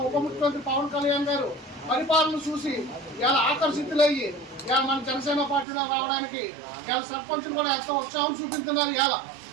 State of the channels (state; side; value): drops out; left; at 5.7 s